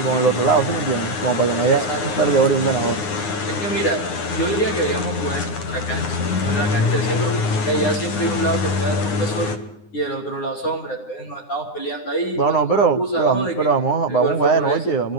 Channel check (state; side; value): late; right; 9.7 ms